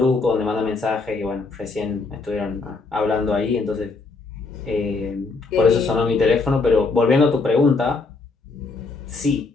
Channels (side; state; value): right; quieter; 3.9 dB